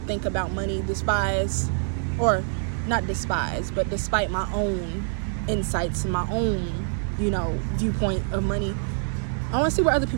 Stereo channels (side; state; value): left; silent; 57 dB below the other